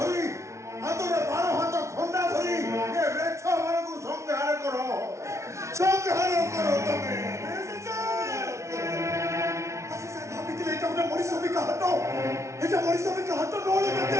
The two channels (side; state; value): left; late; 0.14 ms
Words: ধরি হাতরে 12 হাত খন্ডা ধরি এ বৃক্ষ মানকু সংহার করো তুমি এটা মরিসবিকা হাত নলে